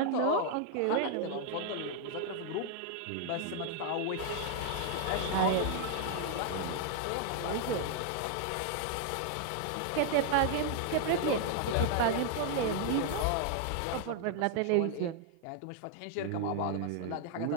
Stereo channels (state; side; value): different; both; correlation 0.00